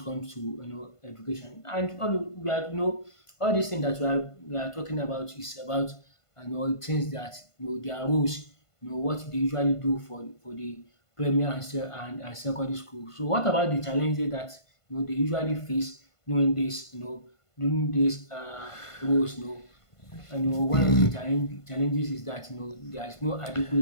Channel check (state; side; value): late; right; 1.5 ms